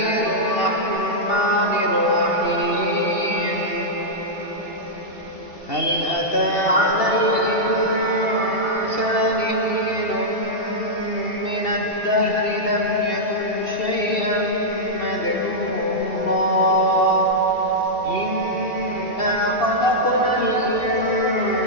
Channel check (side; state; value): right; late; 2.7 ms